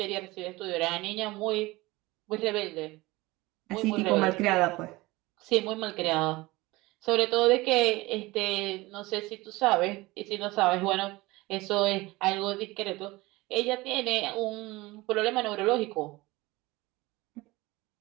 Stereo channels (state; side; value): quieter; left; 21.0 dB